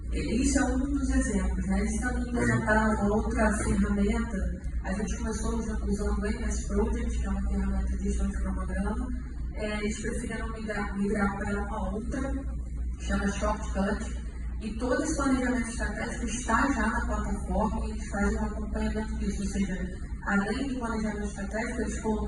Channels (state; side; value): identical; both; correlation 1.00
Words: isso é um dos exemplos. Né? Eles também implementaram uma outra ferramenta. A gente começou usando o MS Project, que é uma ferramenta de gestão de cronograma. Eles preferiram migrar para uma outra, que chama Shortcut. E todo esse planejamento estratégico está já na plataforma e eles fazem um acompanhamento disso. Ou seja, além do planejamento estratégico, eles